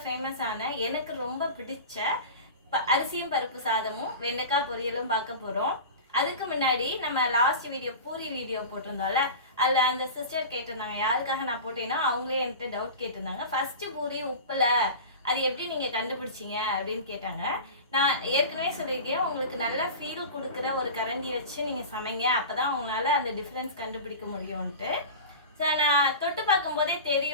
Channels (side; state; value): both; inverted; correlation -0.31